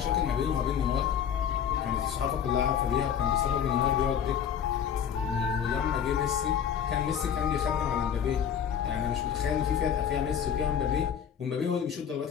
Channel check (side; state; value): right; quieter; 8.3 dB